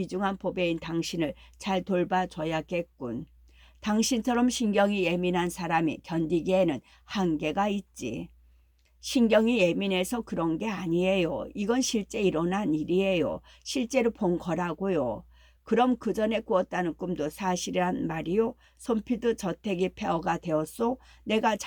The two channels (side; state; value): both; identical; correlation 1.00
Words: 보배인 당신을 잘 돌봐줘야겠군. 당신처럼 신경이 예민한 사람이 견디기에는 한계가 있지. 신경이 예민해서 그런 게 아니에요. 이건 실제 일어난 일이에요. 실제로 본 거라고요. 그럼 그 전에 꾸었다는 꿈도 사실이란 말이요? 손피드 저택이 폐허가 되었소? 내가